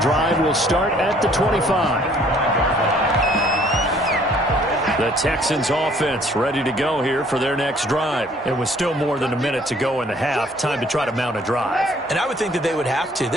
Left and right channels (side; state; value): both; normal; correlation 0.60